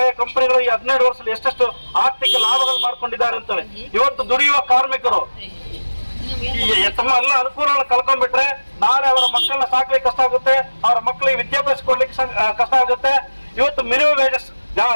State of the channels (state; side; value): inverted; both; correlation -1.00